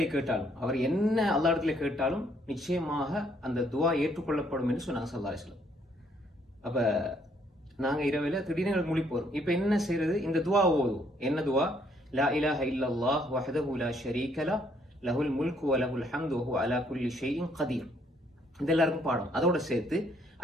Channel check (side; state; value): both; normal; correlation 0.67